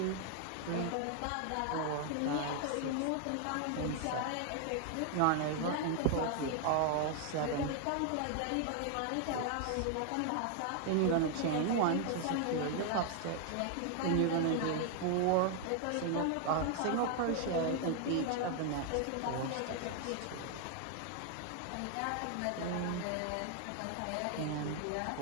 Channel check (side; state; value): both; different; correlation 0.00